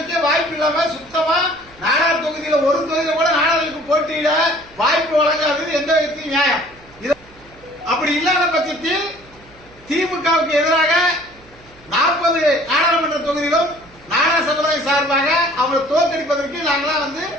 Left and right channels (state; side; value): noise; right; hum, 26 dB below the sound